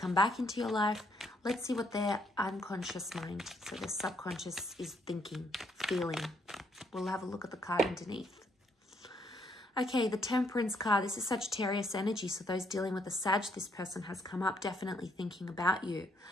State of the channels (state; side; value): normal; both; correlation 0.70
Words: back into your life. Let's see what their unconscious mind, so their subconscious, is thinking, feeling. We'll have a look at the card underneath. Okay, the Temperance card. This is Sagittarius energy, so those dealing with the Sag, this person has come up, definitely thinking about you.